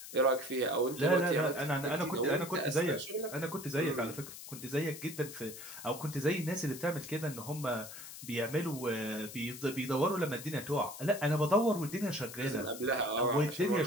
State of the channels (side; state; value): left; noise; hiss, 12 dB below the sound